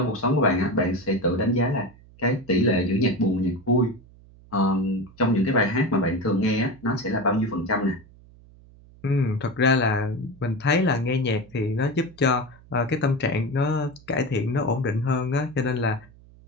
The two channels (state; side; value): noise; right; hum, 24 dB below the sound